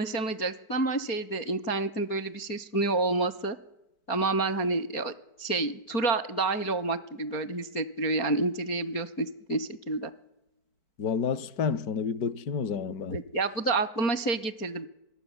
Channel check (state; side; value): late; right; 4.6 ms